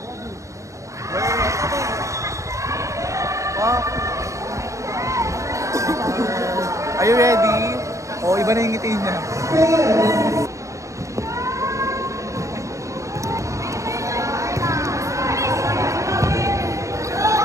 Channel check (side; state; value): left; late; 0.15 ms